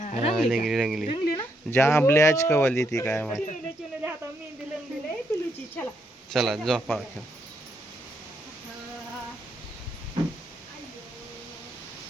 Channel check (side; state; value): both; normal; correlation 0.77